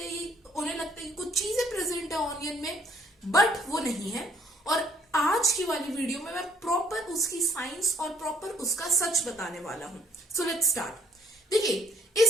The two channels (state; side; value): normal; both; correlation 0.63